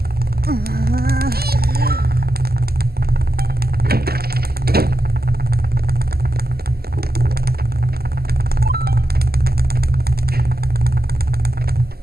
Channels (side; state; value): left; late; 0.45 ms